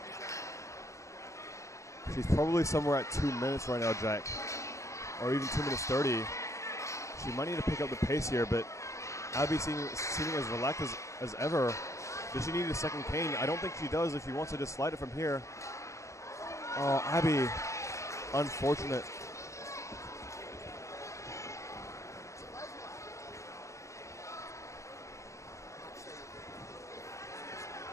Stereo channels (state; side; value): late; right; 0.15 ms